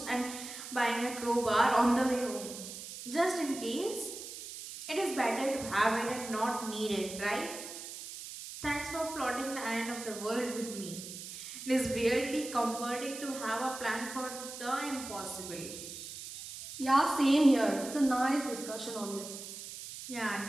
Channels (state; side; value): noise; right; hiss, 10 dB below the sound